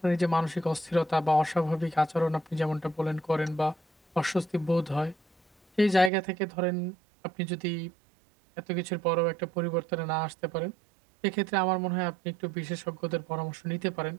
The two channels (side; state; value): left; drops out; at 6.1 s